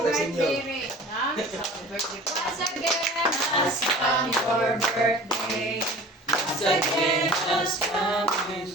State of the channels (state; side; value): normal; both; correlation 0.42